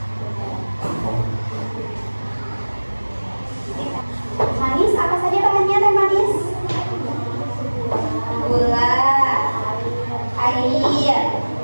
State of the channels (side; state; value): both; inverted; correlation -1.00